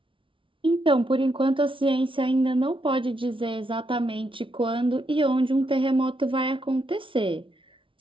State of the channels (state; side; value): late; left; 0.25 ms